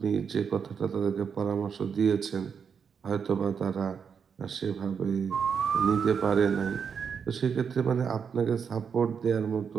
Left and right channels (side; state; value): left; quieter; 6.7 dB